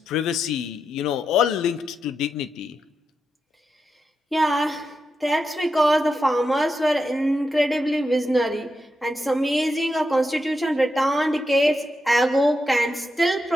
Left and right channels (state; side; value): normal; both; correlation 0.86